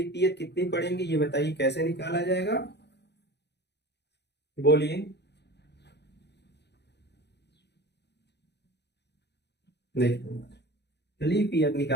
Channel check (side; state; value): right; late; 0.49 ms